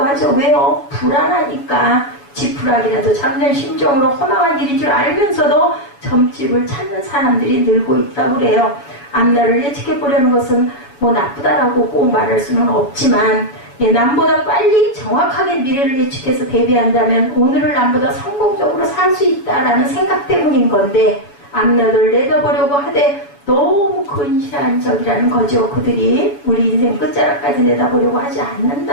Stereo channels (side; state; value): right; late; 7.1 ms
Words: 하죠. 왜요? 불안하니까. 지푸라기라도 잡는 심정으로 허망한 일인 줄 알면서도 점집을 찾는 사람들이 늘고 있다고 그래요. 앞날을 예측해 보려는 것은 뭐 나쁘다라고 꼭 말할 수는 없지만, 남보다 빨리 정확하게 미래를 예측해서 대비한다면 오늘을 남보다 성공적으로 살 수 있다라는 생각 때문인 건데, 앞날을 내다보려고 하되 너무 근시안적이라는 거죠. 그들이 우리 인생 끝자락까지 내다보려고 하지